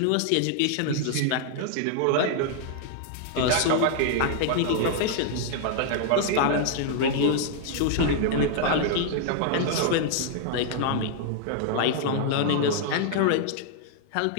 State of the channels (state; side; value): different; both; correlation -0.01